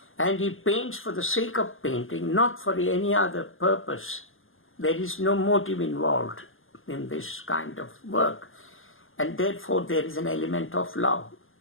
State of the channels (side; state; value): right; late; 0.59 ms